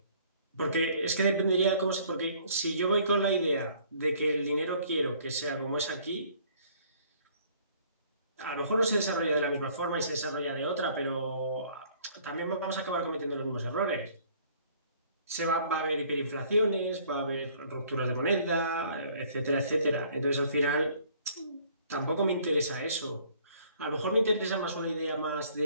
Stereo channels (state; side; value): inverted; both; correlation -0.58